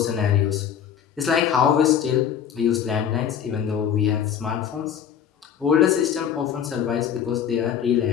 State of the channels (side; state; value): right; quieter; 8.7 dB